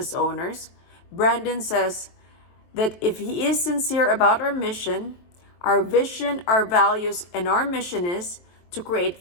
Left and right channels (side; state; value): right; late; 23 ms